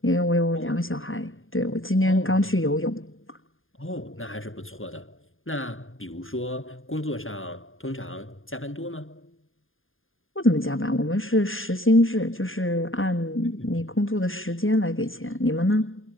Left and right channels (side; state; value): right; late; 0.59 ms